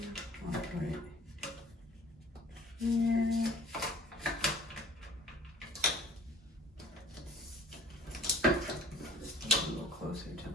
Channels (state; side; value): normal; both; correlation 0.50